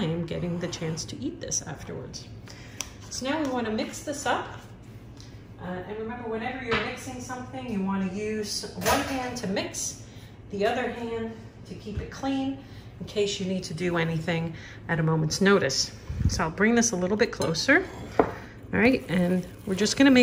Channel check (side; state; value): both; identical; correlation 1.00